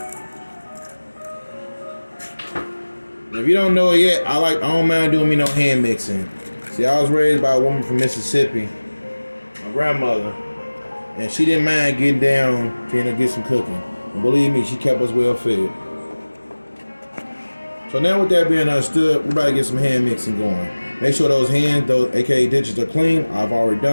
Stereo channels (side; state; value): both; inverted; correlation -1.00